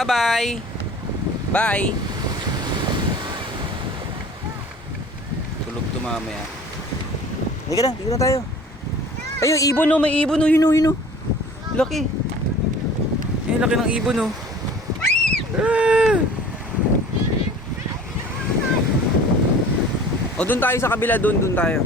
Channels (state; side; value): normal; both; correlation 0.45